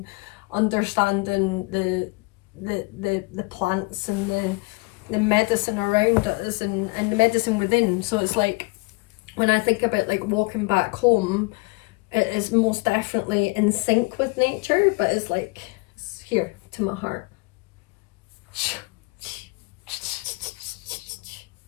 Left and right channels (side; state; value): right; quieter; 26.2 dB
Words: understanding the plants and the medicine around us, and the medicine within. So it's like, when I think about like walking back home, it is most definitely in sync with nature, but it's like, it's here to my heart.